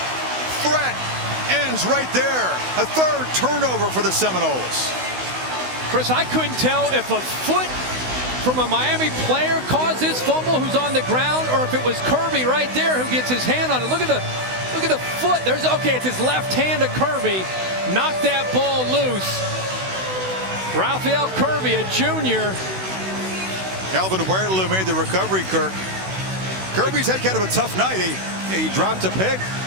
threat ends right there. A 3rd turnover for the Seminoles. Chris, I couldn't tell if a foot from a Miami player caused this fumble who's on the ground, or if it was Kirby right there who gets his hand on it. Look at the foot. Okay, it's his left hand to Kirby. Knocked that ball loose. Raphael Kirby, a junior. Calvin Huerta made the recovery, Kirk. Kirby's had kind of a tough night. He dropped a pick.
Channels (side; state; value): left; late; 16 ms